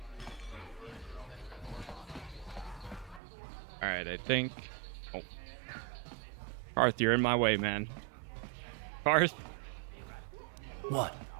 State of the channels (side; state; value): left; drops out; at 3.2 s